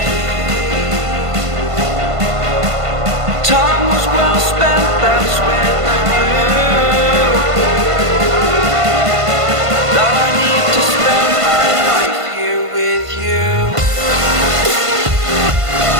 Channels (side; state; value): left; late; 1.5 ms